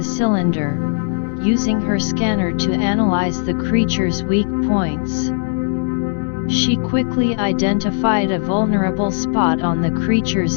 cylinder, using her scanner to analyze the creature's weak points. She quickly identified a vulnerable spot on the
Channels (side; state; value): right; silent; digital silence